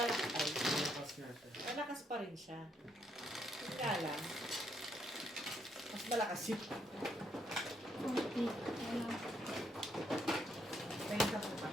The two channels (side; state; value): both; normal; correlation 0.74